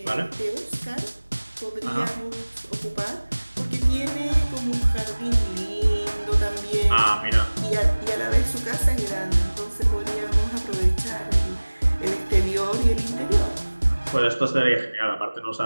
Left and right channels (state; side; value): inverted; both; correlation -1.00